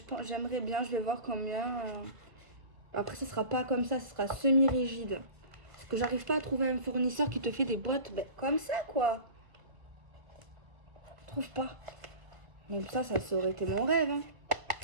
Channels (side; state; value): left; late; 1.5 ms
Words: j'aimerais bien, je vais voir combien... Après, ce sera pas comme ça, ce sera semi-rigide. Parce que j'arrive pas à trouver un fournisseur qui te fait des boîtes ben, comme ça, quoi. Je trouve pas. Même ça aurait été mon rêve. Hein.